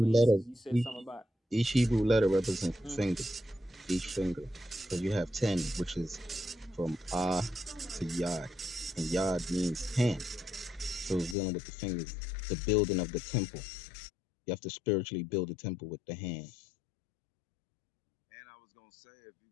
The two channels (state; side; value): drops out; right; at 11.4 s